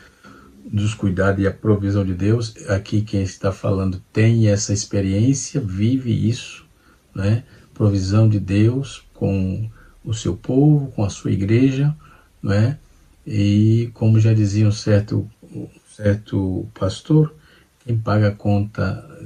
dos cuidados e a provisão de Deus. Aqui quem está falando tem essa experiência, vive isso, provisão de Deus com o seu povo, com a sua igreja, E como já dizia um certo pastor, quem paga a conta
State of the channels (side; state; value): both; identical; correlation 1.00